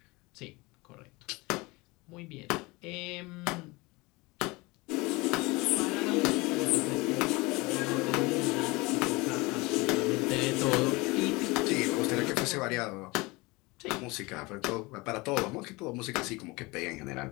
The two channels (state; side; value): quieter; right; 24.0 dB